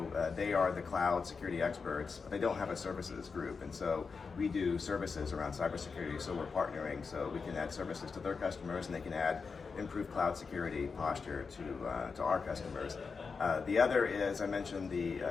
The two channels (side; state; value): right; quieter; 5.1 dB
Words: they are the cloud security experts. They don't have a services group, and so we do services around cybersecurity, so we're partnering so we can add services to their customers, and they can add improved cloud security posture to our customers. The other is, I mentioned the